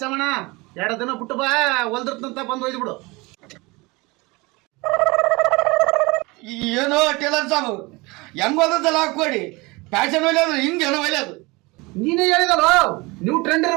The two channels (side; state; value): left; quieter; 24.4 dB